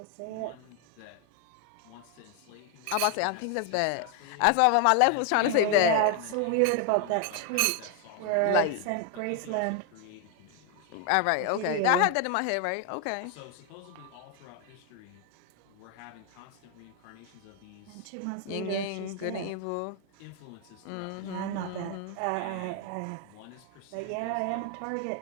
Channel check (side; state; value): both; different; correlation 0.01